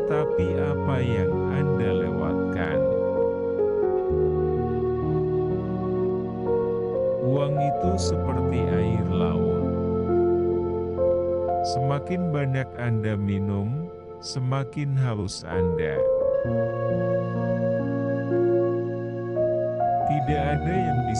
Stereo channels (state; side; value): identical; both; correlation 1.00